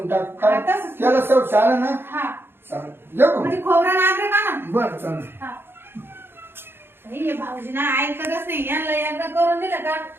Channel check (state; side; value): late; left; 0.11 ms